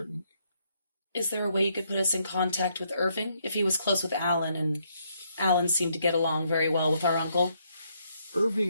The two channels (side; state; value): both; inverted; correlation -0.73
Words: Is there a way you could put us in contact with Irving? If he was close with Alan, and Alan seemed to get along very well with our uncle.